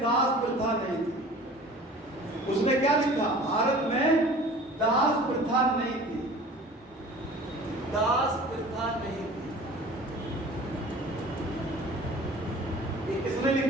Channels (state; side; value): normal; both; correlation 0.44